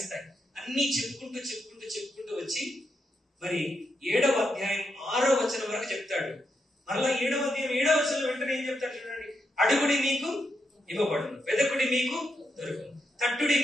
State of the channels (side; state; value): both; normal; correlation 0.83